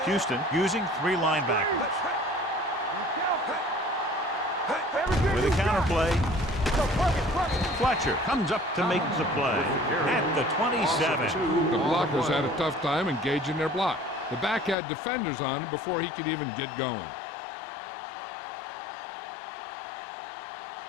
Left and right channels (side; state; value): right; drops out; at 14.8 s